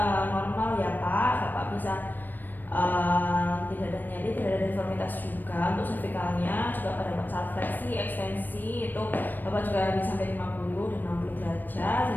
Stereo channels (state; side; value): late; right; 0.091 ms